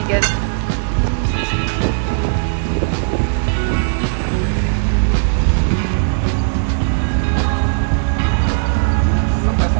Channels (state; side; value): silent; left; digital silence